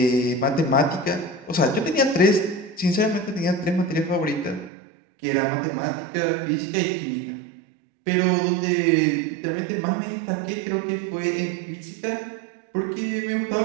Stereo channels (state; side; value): drops out; left; at 4.7 s